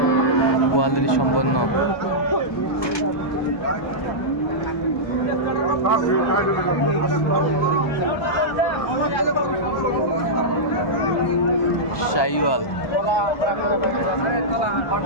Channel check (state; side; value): late; right; 1.2 ms